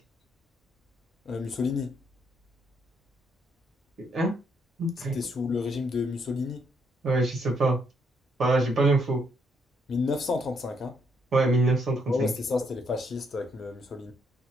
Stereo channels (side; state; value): both; normal; correlation 0.73